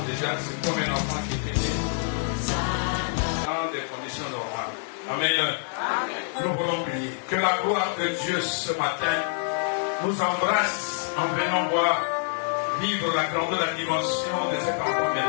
déjà, c'est comme un enfant qui était né dans des conditions normales. Amen. Nous voulons prier. Que la gloire de Dieu ce matin nous embrasse en venant voir vivre la grandeur, la dimension de cet enfant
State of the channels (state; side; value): silent; right; 61 dB below the other